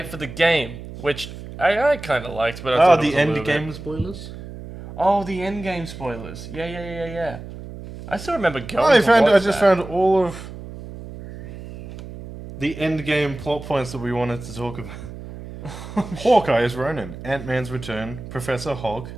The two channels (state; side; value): noise; right; hum, 12 dB below the sound